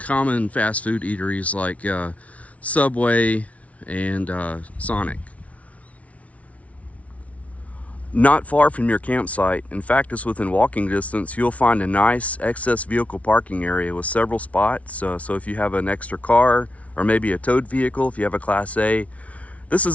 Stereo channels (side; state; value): right; late; 0.066 ms